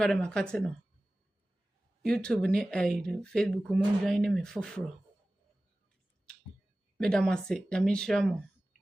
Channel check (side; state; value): both; normal; correlation 0.97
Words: makate no. YouTube ni Facebook mo join me foforo. Me da mase, da me share mo.